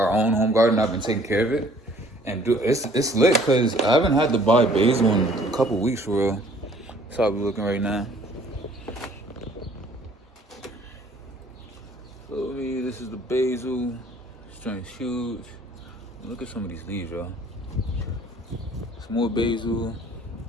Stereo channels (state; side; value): normal; both; correlation 0.56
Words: own home garden. I've been taking care of it. And it's lit because I haven't had to buy basil in a couple weeks for real. That's how we looking right now. Feel me? This is the basil. This joint's huge. Look at some of these leaves, y'all. Some more basil.